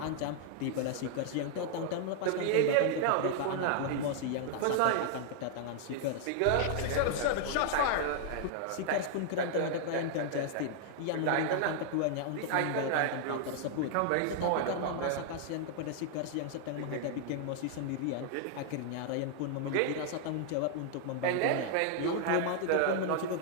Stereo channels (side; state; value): both; different; correlation 0.00